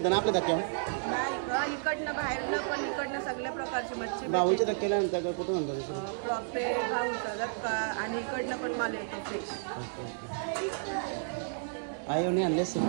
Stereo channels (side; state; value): left; silent; digital silence